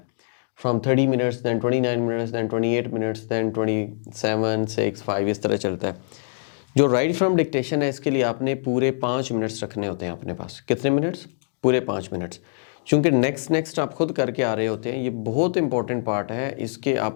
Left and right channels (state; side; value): silent; right; digital silence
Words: from 30 minutes, then 29 minutes, then 28 minutes, then 27, 6, 5 इस तरह चलता है। जो राइट फ्रॉम डिक्टेशन है इसके लिए आपने पूरे 5 मिनट्स रखने होते हैं अपने पास। कितने मिनट्स? पूरे 5 मिनट्स। चूँकि नेक्स्ट आप खुद करके आ रहे होते हैं, ये बहुत इंपॉर्टेंट पार्ट है। इसके